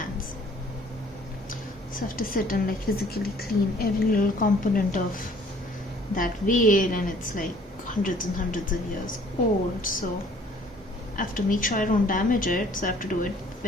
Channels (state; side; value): normal; both; correlation 0.56